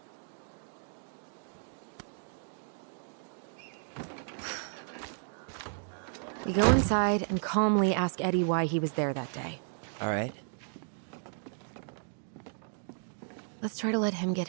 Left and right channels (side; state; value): left; silent; digital silence